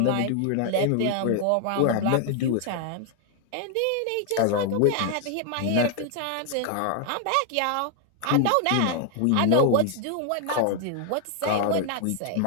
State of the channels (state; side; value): different; both; correlation 0.00